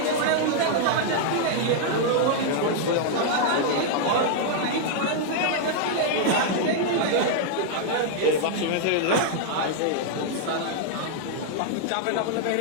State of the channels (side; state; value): both; different; correlation -0.01